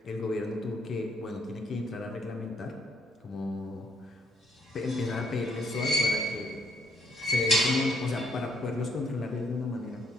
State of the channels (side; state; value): both; normal; correlation 0.71